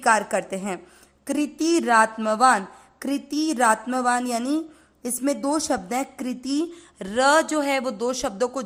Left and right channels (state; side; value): identical; both; correlation 1.00